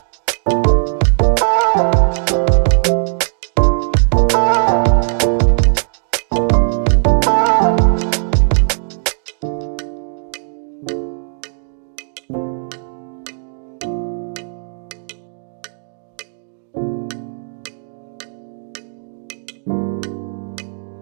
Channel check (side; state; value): left; silent; 66 dB below the other